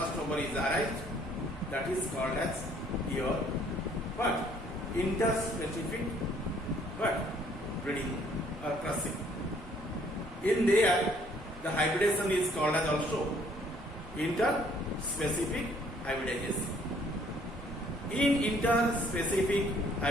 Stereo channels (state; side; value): normal; both; correlation 0.62